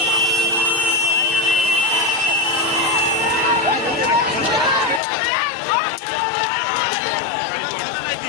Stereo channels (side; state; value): right; drops out; at 5.0 s